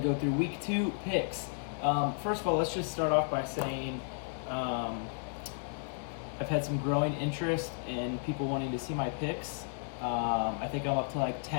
go through week 2 picks. First of all, let's just start off by saying I've had some growing interest in people wanting to see my picks. I think I'm up to like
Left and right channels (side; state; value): right; silent; digital silence